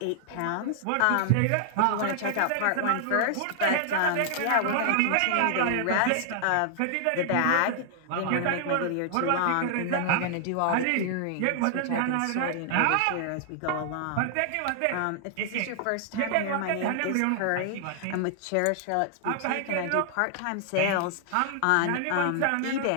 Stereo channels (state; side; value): different; both; correlation -0.01